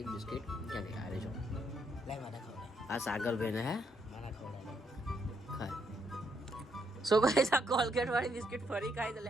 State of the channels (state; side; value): normal; both; correlation 0.75